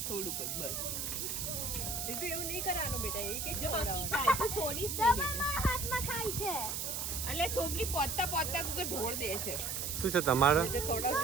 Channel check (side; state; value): right; noise; hiss, 3 dB below the sound